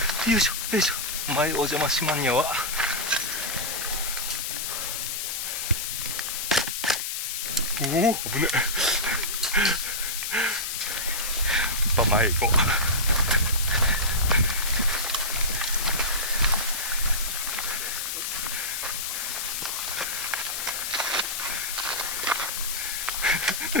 よいしょよいしょ。前お邪魔しまんにゃわ。おお危ねえ。やっぱ前行こう。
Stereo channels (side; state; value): left; noise; hiss, 3 dB below the sound